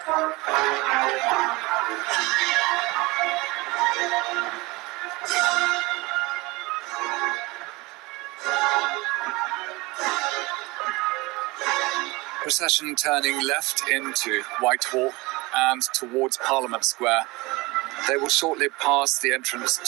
Procession turning left into Whitehall and towards Parliament Square. They will shortly pass the entrance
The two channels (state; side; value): quieter; left; 23.2 dB